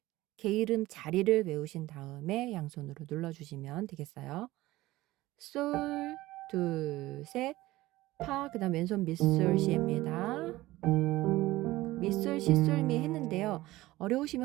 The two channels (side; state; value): left; quieter; 17.8 dB